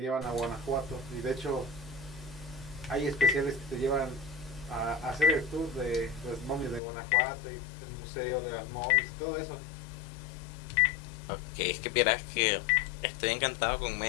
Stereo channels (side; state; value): right; drops out; at 6.8 s